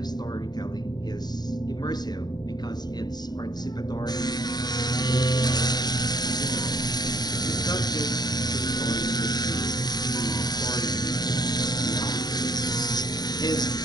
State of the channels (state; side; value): late; right; 0.20 ms